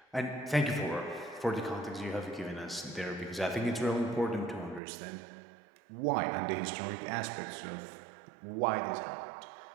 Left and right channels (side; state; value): left; drops out; at 4.8 s